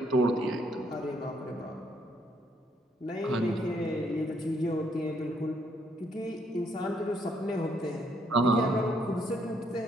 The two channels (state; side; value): normal; both; correlation 0.71